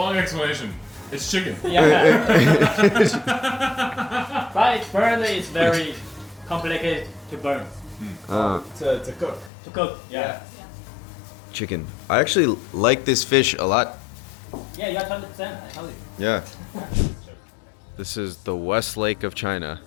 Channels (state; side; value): drops out; right; at 9.5 s